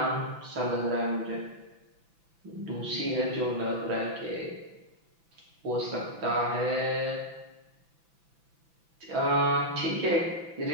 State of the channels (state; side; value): late; left; 6.0 ms